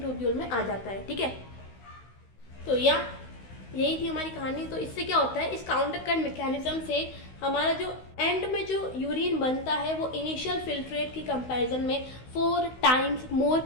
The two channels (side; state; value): right; late; 16 ms